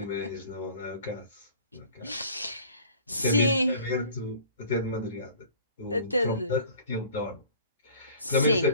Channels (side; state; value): both; inverted; correlation -0.47